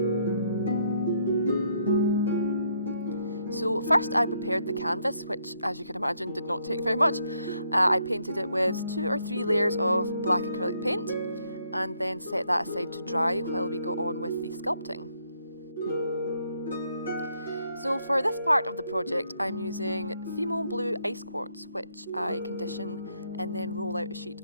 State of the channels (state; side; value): inverted; both; correlation -0.73